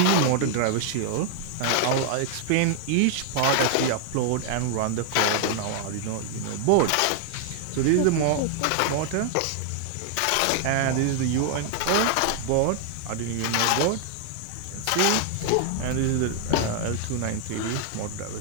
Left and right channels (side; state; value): both; different; correlation 0.00